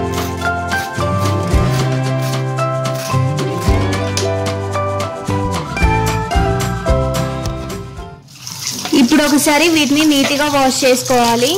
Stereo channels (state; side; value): identical; both; correlation 1.00